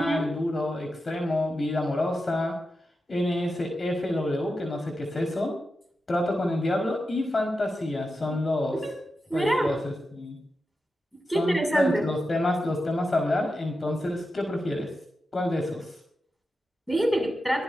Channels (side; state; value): both; normal; correlation 0.90